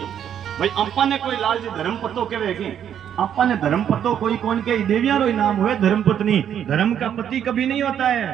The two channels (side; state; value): left; quieter; 9.3 dB